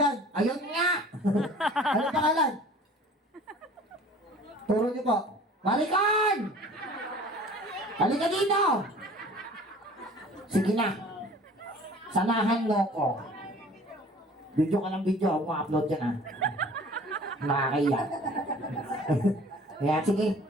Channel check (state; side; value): normal; both; correlation 0.47